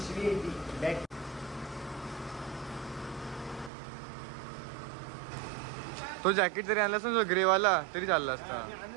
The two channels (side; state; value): left; drops out; at 3.7 s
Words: तो जॅकेट जरी आणला असता ग्रेवाला तरी चालला असता.